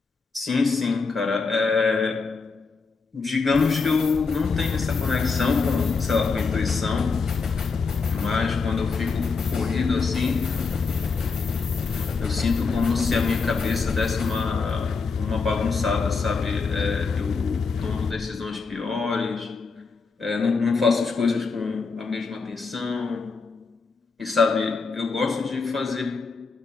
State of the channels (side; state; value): right; quieter; 4.7 dB